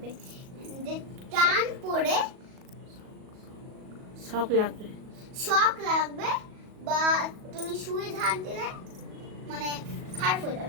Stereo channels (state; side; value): late; left; 38 ms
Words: যে টান পড়ে শক লাগবে। শক লাগবে, বা তুমি সুইচ হাত দিলে মানে খারাপ হয়ে